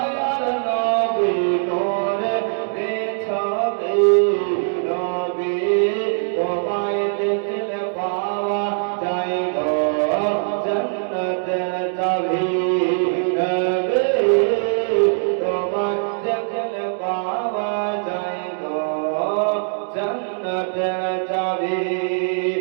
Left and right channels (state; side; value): silent; left; digital silence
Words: নবী, নূরের ছবি, নবী তোমায় দেখলে পাওয়া যায় গো জান্নাতের চাবি,